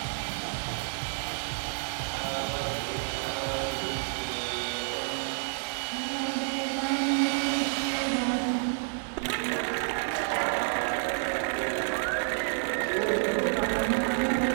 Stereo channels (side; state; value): left; silent; digital silence